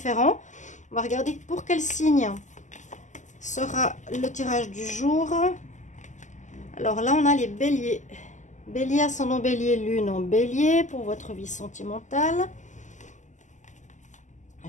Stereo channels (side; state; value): right; late; 0.35 ms